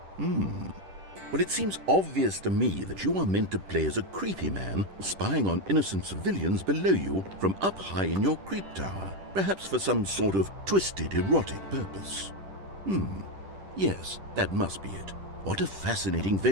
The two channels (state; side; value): late; left; 10 ms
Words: Well, it seems obvious to me that you are meant to play as a creepy man spying on innocent civilians below you from up high in your creep tower, perhaps for some sort of twisted erotic purpose. Yes, that must be it. What a fascinating